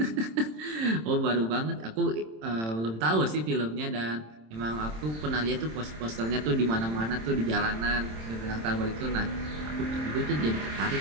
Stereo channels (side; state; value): left; late; 27 ms